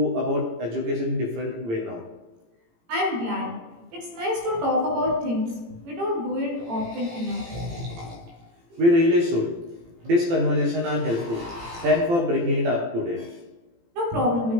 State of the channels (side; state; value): left; late; 18 ms